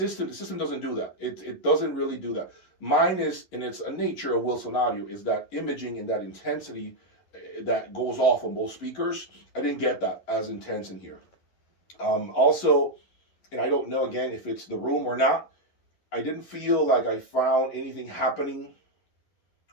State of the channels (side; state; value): right; late; 11 ms